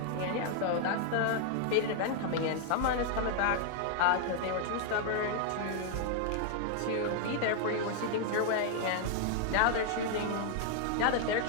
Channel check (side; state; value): both; different; correlation 0.00